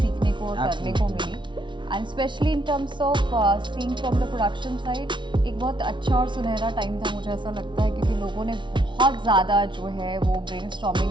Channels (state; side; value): late; left; 0.24 ms